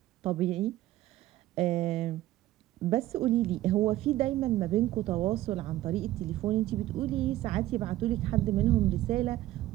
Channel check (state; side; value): quieter; left; 15.2 dB